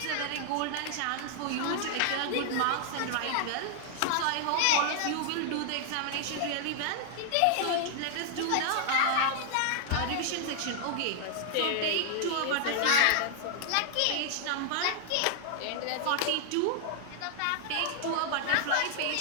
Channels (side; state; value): both; different; correlation 0.00